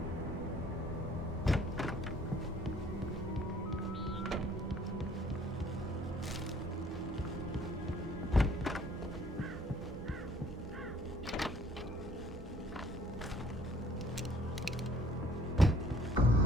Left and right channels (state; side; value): normal; both; correlation 0.59